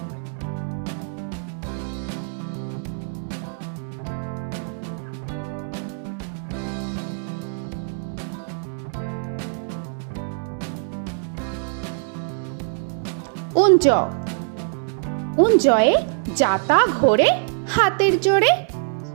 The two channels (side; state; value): left; silent; 63 dB below the other